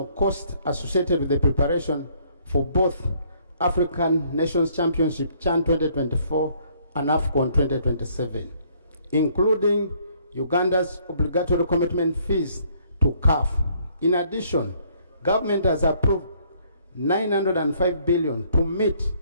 costs associated with the preparation for both African Nations Championship CHAN 2024 and AFCON 2027, including Uganda's obligatory commitment fees to CAF. In addition, government has approved 905 billion to meet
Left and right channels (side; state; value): both; inverted; correlation -0.65